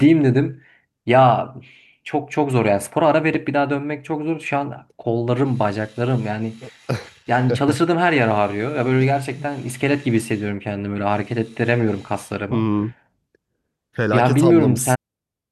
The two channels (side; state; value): both; identical; correlation 1.00